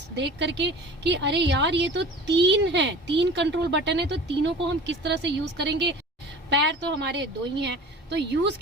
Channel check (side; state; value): both; normal; correlation 0.40